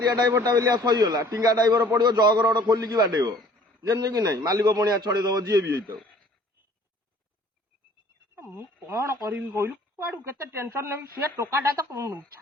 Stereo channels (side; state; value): both; normal; correlation 0.53